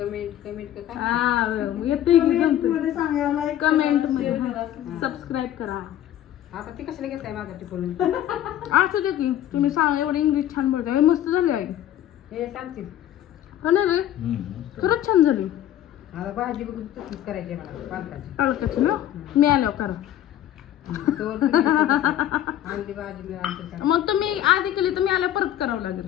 हा येते कमेंट मध्ये. सबस्क्राईब करा. आता ती कशाला घेताय माझा टिपून? असं दे की तुम्ही सांगा. एवढं इंग्लिश छान बोलताय. मस्त झाली आई. हे सांगतील हो ना रे? खरंच छान झाली. आता भाजी बघून तशीच करायची मला पालकाची. पालकाची ना? मी आल्यावर करा. आणली भाजी मी आणते. मग तुम्ही आधी केली तर मी आल्यावर परत करावं लागेल.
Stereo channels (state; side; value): quieter; right; 11.9 dB